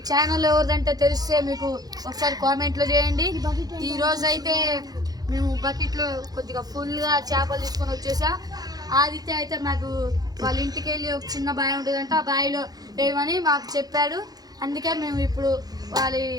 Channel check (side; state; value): left; late; 0.19 ms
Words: ఛానల్ ఎవరిదంటే తెలిస్తే మీకు ఒకసారి కామెంట్లో చేయండి. ఈరోజు అయితే మేము బకెట్లో కొద్దిగా ఫుల్గా చేపలు తీసుకొని వచ్చేసా. ఆదిత్య అయితే మాకు వాళ్ళ ఇంటికి వెళ్ళి ఒక చిన్న బావి ఉంటుందంట, ఆ బావిలో వేయమని మాకు చెప్పాడు. అందుకే మేము ఇప్పుడు వాళ్ళ